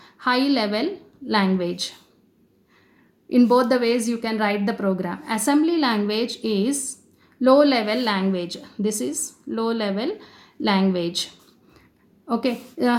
high level language. In both the ways you can write the program. Assembly language is low level language. This is low level language. Okay,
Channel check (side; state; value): both; identical; correlation 1.00